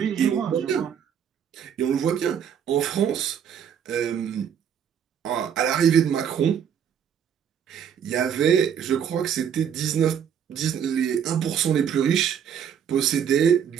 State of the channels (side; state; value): left; quieter; 8.3 dB